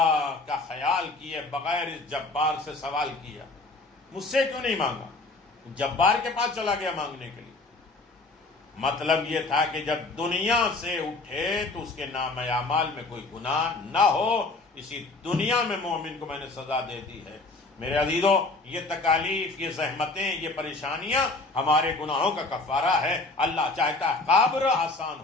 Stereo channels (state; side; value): quieter; right; 3.3 dB